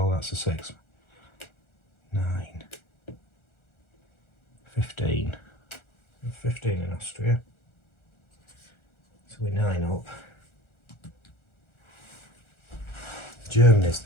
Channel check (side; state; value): right; late; 1.4 ms